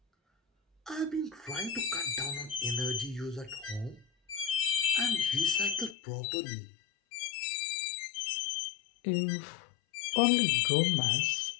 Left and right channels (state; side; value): drops out; right; at 6.0 s